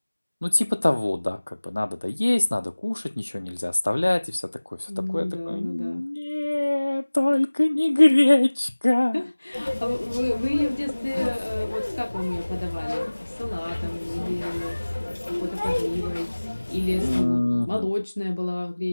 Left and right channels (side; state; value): both; inverted; correlation -1.00